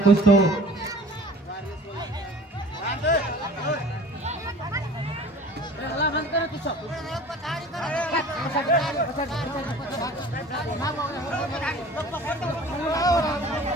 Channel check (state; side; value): normal; both; correlation 0.45